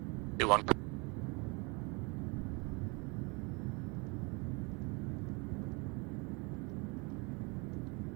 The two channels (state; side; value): quieter; left; 29.6 dB